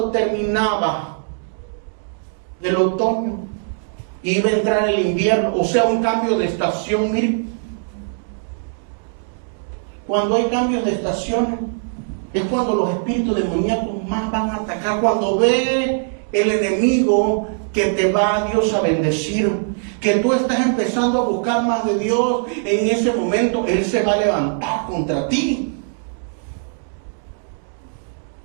terminaba el otoño. Iba a entrar el invierno, o sea, un cambio de estación. Mire, cuando hay cambios de estaciones, es cuando los espíritus demoníacos más van a atacar. Cuando ve el enemigo que te va a Dios a bendecir, que tú estás empezando a buscar más de Dios, en ese momento Él se va a levantar contra ti.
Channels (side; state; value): left; silent; 65 dB below the other